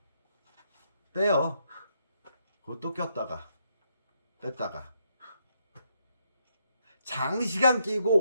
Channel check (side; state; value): both; inverted; correlation -0.77